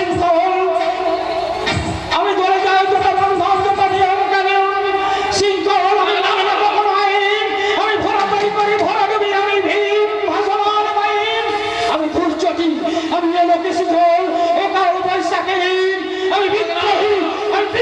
আমি ধরে যাই যত বন্ধন, যত নিয়ম কানুন শৃঙ্খল, আমি মানি না কখনো আইন, আমি ভরাতরি করি ভরাডুবি, আমি ভীম ভাসমান আইন, আমি দুর্যোগী, আমি লোকে শিখল, একাল বৈশাখীহীন, আমি বিদ্রোহী, আমি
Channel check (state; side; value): identical; both; correlation 1.00